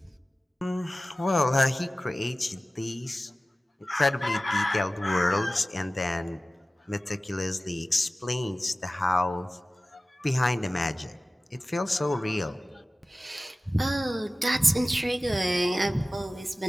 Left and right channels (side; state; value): both; normal; correlation 0.96